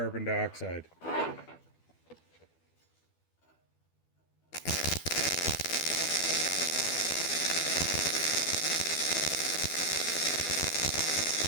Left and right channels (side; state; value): right; late; 12 ms